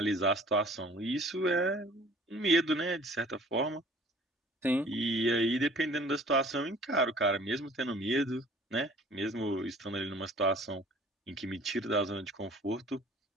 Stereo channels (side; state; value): both; normal; correlation 0.51